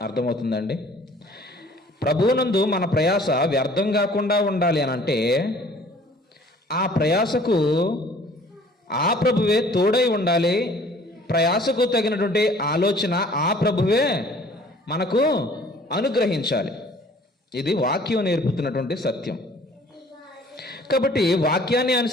అర్థమవుతుందండి? ప్రభువునందు మన ప్రయాస వ్యర్థం కాకుండా ఉండాలి అని అంటే ఆ ప్రయాసకు ఆ ప్రభువే తోడై ఉండాలి. ప్రయాసకు తగినటువంటి ఆలోచన ఆ ప్రభువే మనకు అనుగ్రహించాలి. ఇది వాక్యం నేర్పుతున్నటువంటి సత్యం. కాబట్టి వాక్యాన్ని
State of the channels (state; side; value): normal; both; correlation 0.53